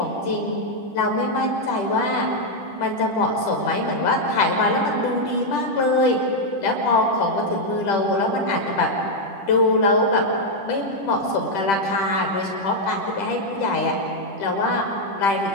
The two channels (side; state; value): right; late; 10 ms